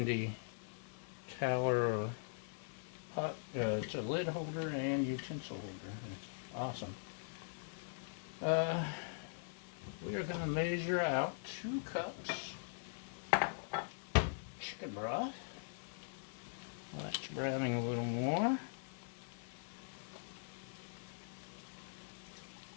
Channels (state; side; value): silent; right; digital silence